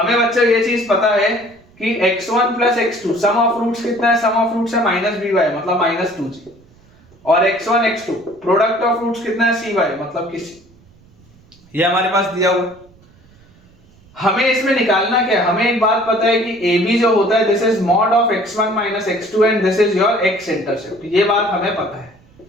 बच्चों ये चीज पता है कि x1 plus x2 sum of roots कितना है? सम ऑफ रूट्स है -by मतलब -2g, और x1 x2 product of roots कितना है? cy मतलब कि c। ये हमारे पास दिया हुआ। हमें इसमें निकालना क्या है? हमें एक बात पता है कि AB जो होता है this is mod of x1 x2 and this is your x intercept. ये बात हमें पता है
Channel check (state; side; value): noise; right; rumble, 29 dB below the sound